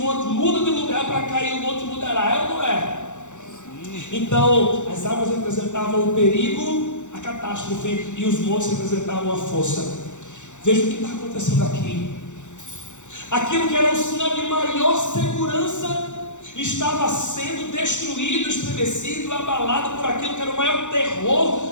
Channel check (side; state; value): right; late; 0.85 ms